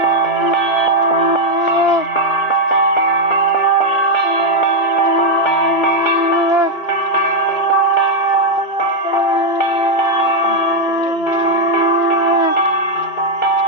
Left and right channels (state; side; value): late; right; 2.4 ms